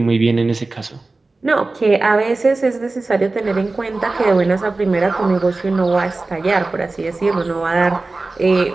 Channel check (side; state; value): left; quieter; 3.4 dB